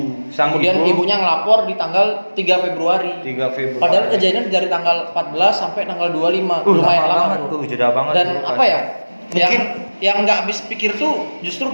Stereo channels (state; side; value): inverted; both; correlation -1.00